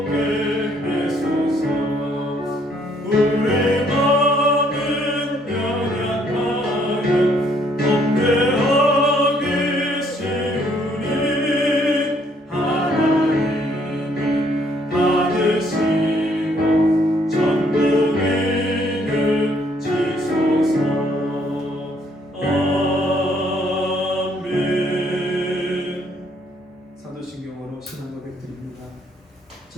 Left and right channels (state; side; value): normal; both; correlation 0.67